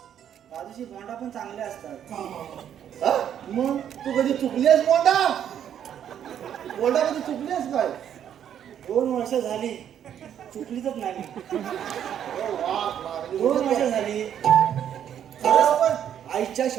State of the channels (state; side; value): quieter; left; 9.6 dB